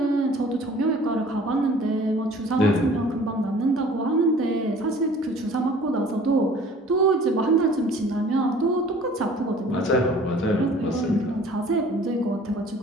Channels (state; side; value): normal; both; correlation 0.49